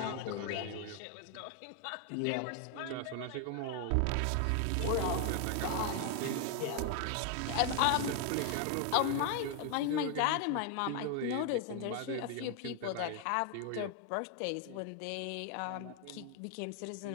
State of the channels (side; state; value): both; different; correlation 0.00